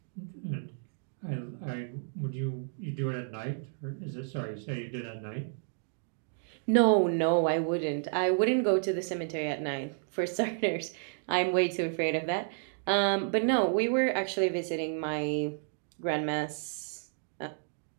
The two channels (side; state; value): left; silent; digital silence